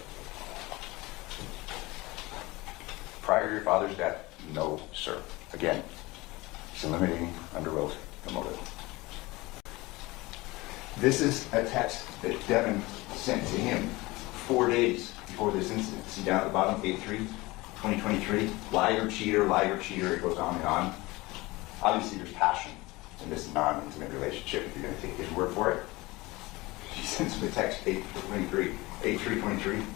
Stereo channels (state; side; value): quieter; right; 21.6 dB